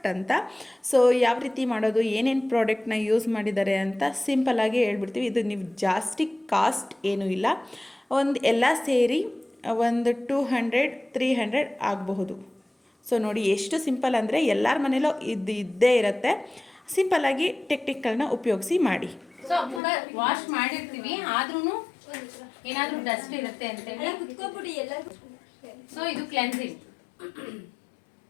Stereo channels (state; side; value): drops out; right; at 19.8 s